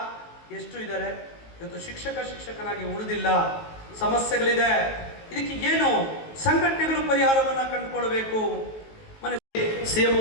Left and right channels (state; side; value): late; right; 19 ms